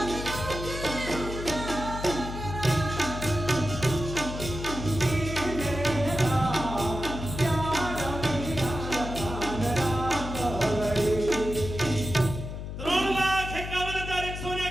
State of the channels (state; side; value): noise; left; hum, 7 dB below the sound